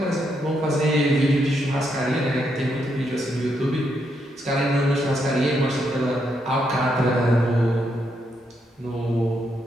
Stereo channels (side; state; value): both; normal; correlation 0.78